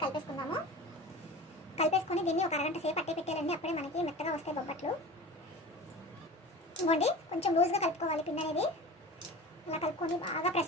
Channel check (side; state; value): both; normal; correlation 0.35